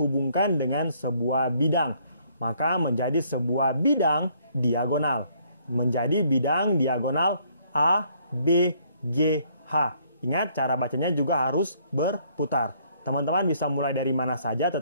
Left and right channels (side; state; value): both; inverted; correlation -0.65